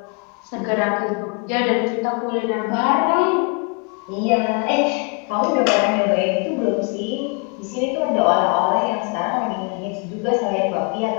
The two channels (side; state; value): right; quieter; 34.1 dB